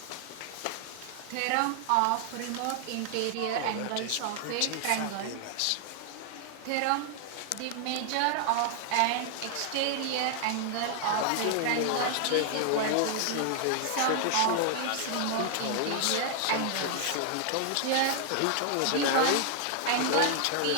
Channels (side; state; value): both; different; correlation 0.00